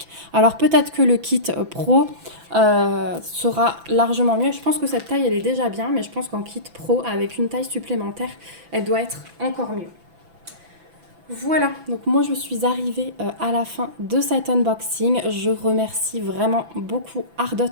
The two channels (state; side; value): late; left; 6.0 ms